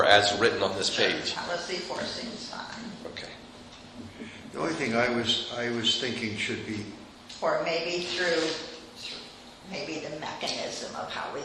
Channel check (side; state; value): both; identical; correlation 1.00